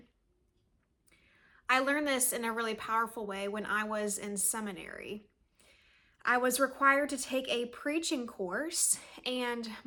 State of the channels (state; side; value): identical; both; correlation 1.00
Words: I learned this in a really powerful way when I was in seminary. I was required to take a preaching course, and